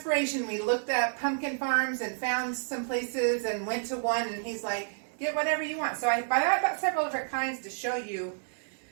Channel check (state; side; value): silent; left; digital silence